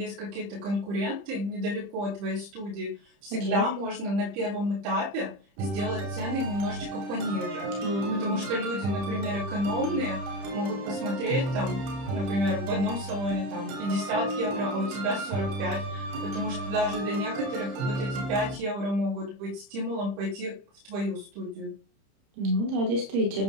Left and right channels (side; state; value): left; late; 30 ms